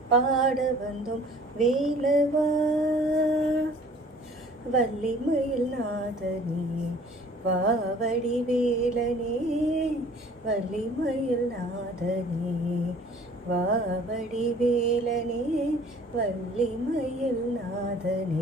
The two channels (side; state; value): both; normal; correlation 0.51